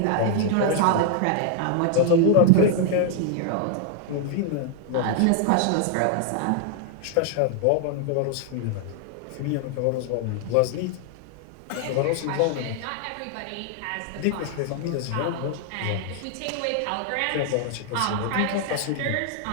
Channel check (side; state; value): both; different; correlation 0.00